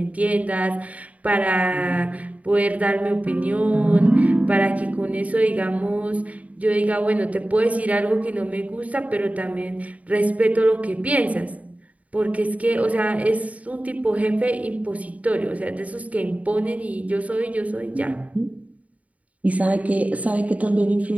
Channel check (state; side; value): late; left; 0.069 ms